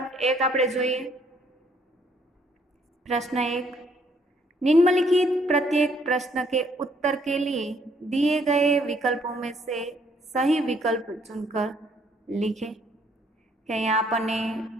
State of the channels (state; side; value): normal; both; correlation 0.66